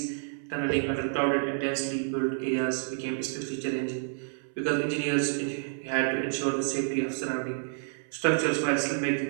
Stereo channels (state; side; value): silent; left; 58 dB below the other